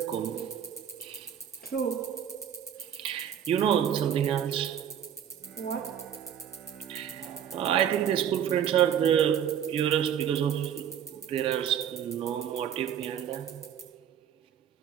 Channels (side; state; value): left; quieter; 9.2 dB